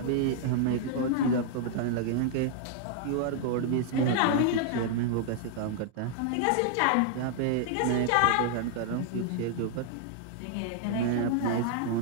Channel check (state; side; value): different; both; correlation -0.01